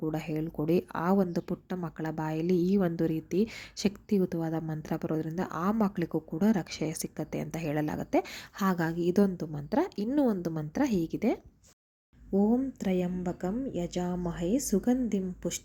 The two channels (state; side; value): identical; both; correlation 1.00